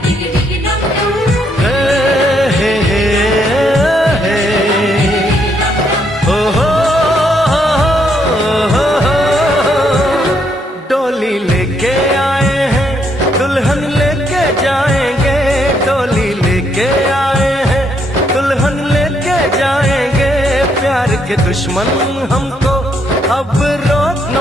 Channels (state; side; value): normal; both; correlation 0.73